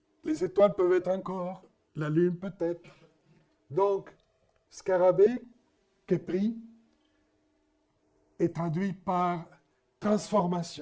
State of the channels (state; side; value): identical; both; correlation 1.00